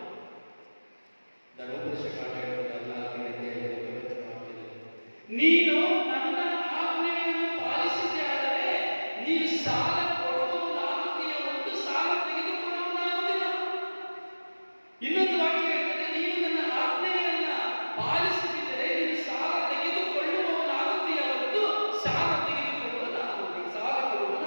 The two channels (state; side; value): inverted; both; correlation -1.00